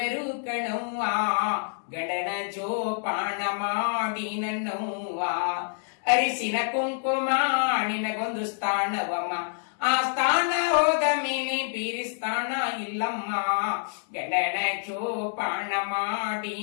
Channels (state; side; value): silent; right; digital silence